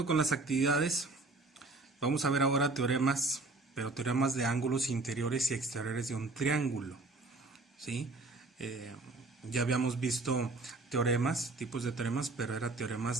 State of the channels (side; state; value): left; quieter; 3.3 dB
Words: con las actividades, vamos a ver ahora teoremas, pero teoremas de ángulos interiores y exteriores de un triángulo, ¿sí? Eh, ya habíamos visto teoremas, tipos de teoremas, pero era